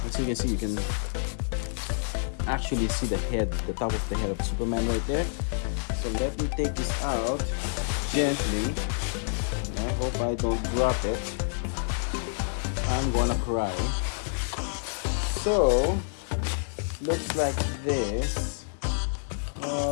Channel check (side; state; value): right; silent; digital silence